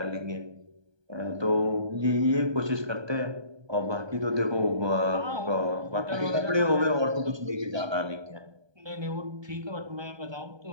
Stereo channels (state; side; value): late; left; 1.2 ms